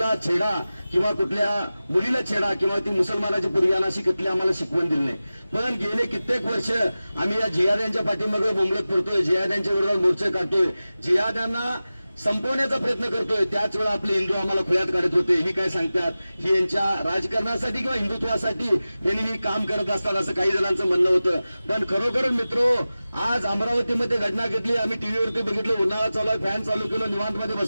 छेडा किंवा कुठल्या मुलीला छेडा किंवा ती मुसलमानाची पूर्वीयाना अशी कुठली आम्हाला शिकवण दिली नाही. पण गेले कित्येक वर्ष आम्ही या जिहाद्यांच्या पाठीमागे बोंबलत फिरतोय, जिहाद्यांच्या विरोधात मोर्चे काढतोय, जिहाद्यांना संपवण्याचा प्रयत्न करतोय. त्याच वेळा आपले हिंदू आम्हाला खुळ्यात काढत होते. ही काय सांगतात, ही यांच्या राजकारणासाठी किंवा हिंदुत्वासाठी यांनी ही काम करत असतात असं काही जणांचं म्हणणं होतं. पण खरोखर मित्रो, आज अमरावतीमध्ये घटना घेतली, आम्ही टीव्हीवरती बघितलं, उन्हाळा चालू आहे, फॅन चालू केलं, निवांतमध्ये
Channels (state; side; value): inverted; both; correlation -0.96